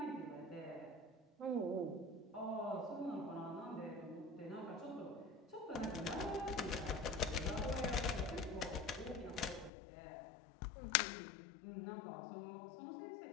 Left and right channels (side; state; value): right; drops out; at 9.7 s